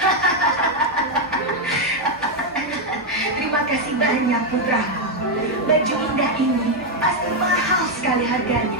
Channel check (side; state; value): both; normal; correlation 0.02